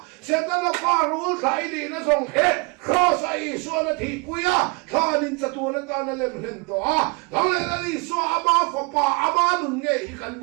sẽ tới là pha hú khải đi nó xong hết khó sai xua nó thì quý à thà nên chặt tuôn nó ta nó lên lên to à thằng này nó đi xua ama phật pa ama nung nghe ý căn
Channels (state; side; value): quieter; left; 30.1 dB